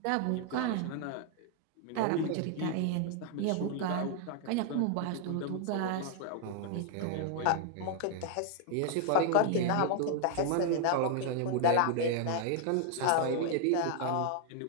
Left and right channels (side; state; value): both; different; correlation 0.00